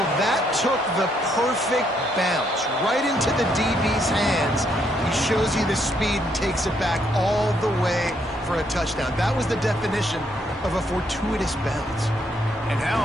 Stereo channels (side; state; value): both; normal; correlation 0.73